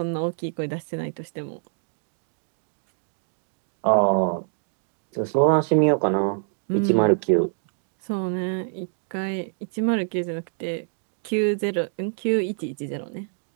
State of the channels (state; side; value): silent; left; digital silence